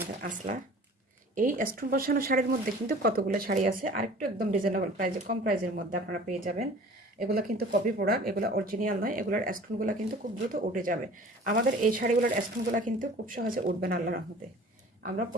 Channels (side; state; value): both; normal; correlation 0.45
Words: আসলা। এই স্টোন বসানো শাড়ির মধ্যে কিন্তু কতগুলো শাড়ি আছে, আরেকটু একদম রিজনেবল প্রাইসে, কম প্রাইসের মধ্যে আপনারা পেয়ে যাবেন। এগুলো কিন্তু কপি প্রোডাক্ট, এগুলো অরিজিনাল নয়। এগুলোর স্টোনগুলো কিন্তু খুব দ্রুত উঠে যাবে। আমাদের এই শাড়িগুলোর স্টোনগুলো কিন্তু খুব সহজে উঠবে না আল্লাহর রহমতে। আমরা